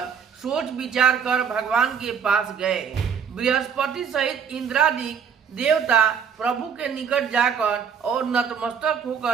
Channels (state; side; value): quieter; left; 7.1 dB